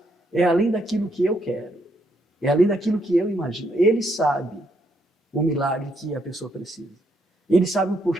é além daquilo que eu quero. É além daquilo que eu imagino. Ele sabe o milagre que a pessoa precisa. Ele sabe o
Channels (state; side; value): normal; both; correlation 0.74